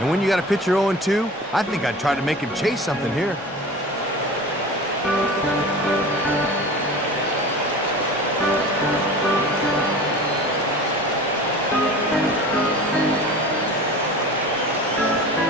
when you got a pitcher 0-2, I think I'd try to make him chase something here.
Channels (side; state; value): both; normal; correlation 0.36